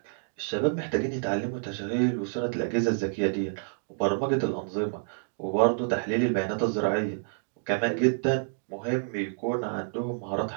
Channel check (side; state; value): left; silent; digital silence